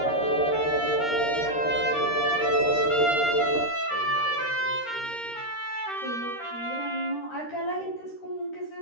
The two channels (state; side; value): late; right; 13 ms